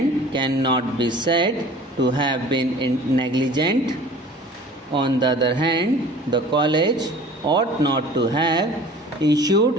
cannot be said to have been negligent. On the other hand, the college ought not to have issued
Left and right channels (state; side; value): normal; both; correlation 0.45